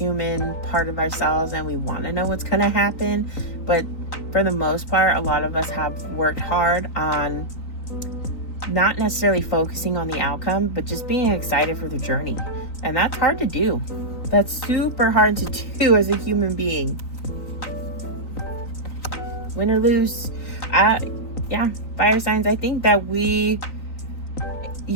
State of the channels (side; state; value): right; late; 3.9 ms